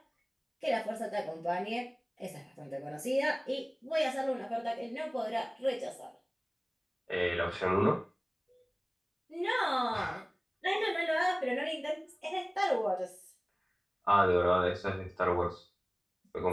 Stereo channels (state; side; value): identical; both; correlation 1.00